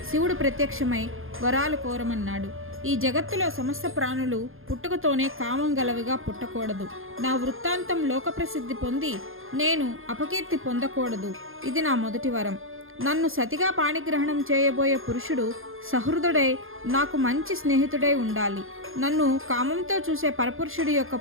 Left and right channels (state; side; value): late; left; 0.60 ms